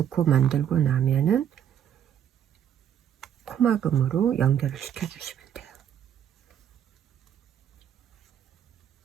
만들고 나면은 코막음으로 연결을 시켜 주시면 돼요.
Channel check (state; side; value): quieter; left; 9.5 dB